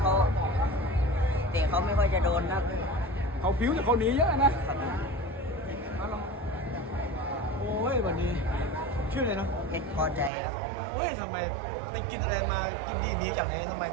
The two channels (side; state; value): left; drops out; at 10.3 s